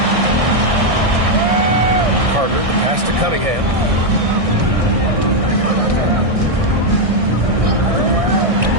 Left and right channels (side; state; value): left; late; 1.6 ms